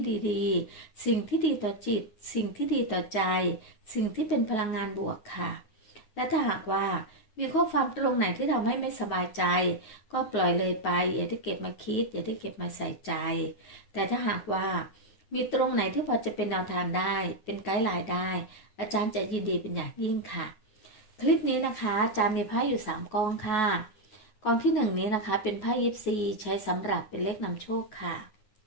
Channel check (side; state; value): right; late; 9.3 ms